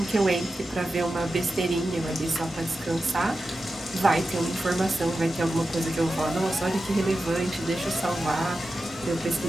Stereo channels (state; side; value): normal; both; correlation 0.92